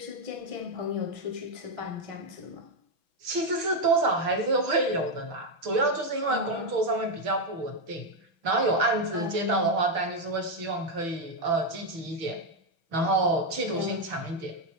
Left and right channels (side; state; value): left; late; 6.1 ms